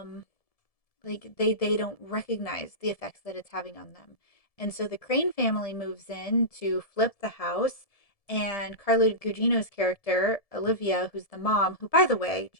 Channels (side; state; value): right; late; 1.7 ms